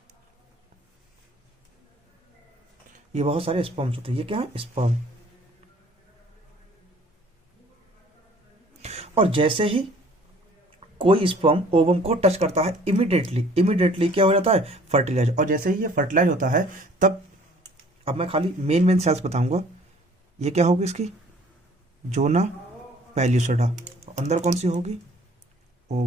ये बहुत सारे स्पर्म्स होते हैं। ये क्या है, स्पर्म। और जैसे ही कोई स्पर्म ओवम को टच करता है, इमीडिएटली क्या हो जाता है, फर्टिलाइज। और जैसे ही ये फर्टिलाइज होता है, तब अब मैं खाली मेन सेल्स बताऊंगा। ये क्या होगी इसकी, जोना पेल्यूसिडा। अंदर कौन सी होगी,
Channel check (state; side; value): normal; both; correlation 0.54